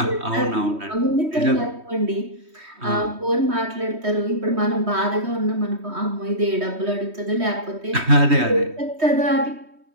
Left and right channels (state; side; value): late; left; 3.2 ms